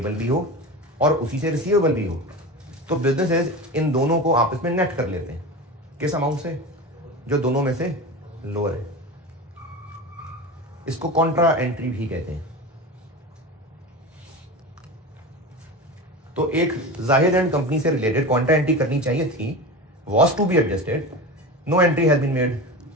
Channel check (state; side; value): normal; both; correlation 0.27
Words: भी हो और उसी से रिसीवेबल भी हो तो बिजनेसेस इन दोनों को आपस में नेट कर लेते हैं। किस अमाउंट से? जो दोनों में से लोअर है। इसको कॉन्ट्रा एंट्री भी कहते हैं। तो एक जाहिद एंड कंपनी से रिलेटेड कॉन्ट्रा एंट्री करनी चाहिए थी, was to be adjusted, no entry has been made,